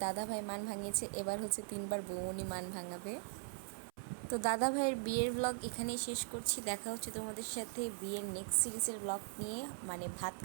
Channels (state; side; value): silent; left; 51 dB below the other